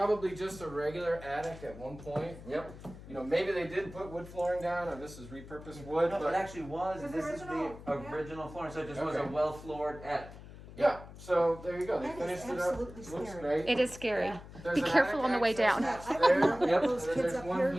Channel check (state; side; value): noise; left; hum, 16 dB below the sound